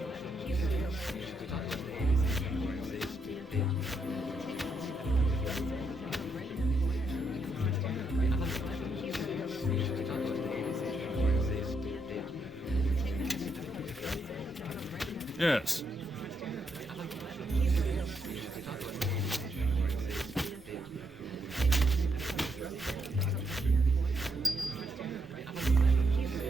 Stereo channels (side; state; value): both; normal; correlation 0.78